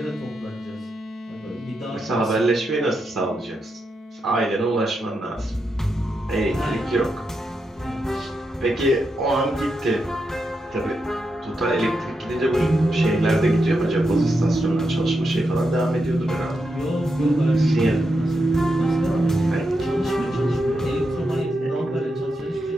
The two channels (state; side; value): normal; both; correlation 0.85